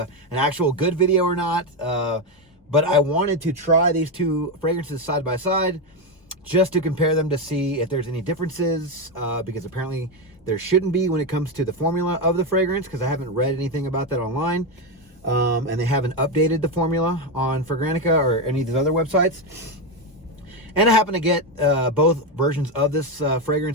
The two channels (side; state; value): both; normal; correlation 0.09